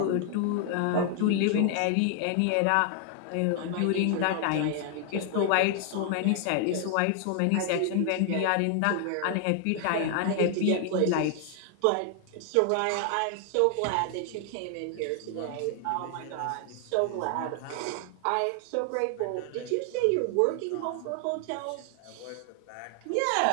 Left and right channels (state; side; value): different; both; correlation 0.00